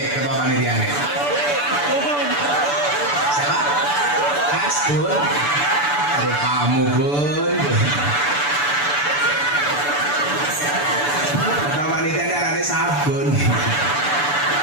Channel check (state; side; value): late; right; 6.9 ms